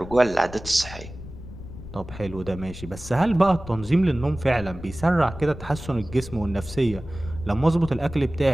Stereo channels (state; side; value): noise; left; rumble, 13 dB below the sound